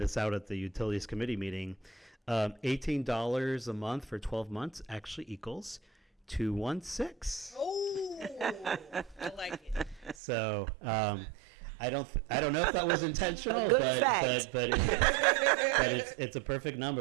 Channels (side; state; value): left; drops out; at 10.2 s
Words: out at the Utilities Committee meeting. $18 a month for 12 months actually equals $216. Oh, I like it. So I don't know if that was intentional, but it's a perfect